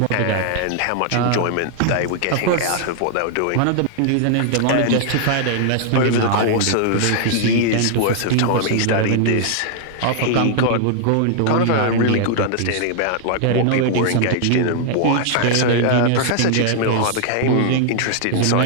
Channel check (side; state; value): both; different; correlation 0.00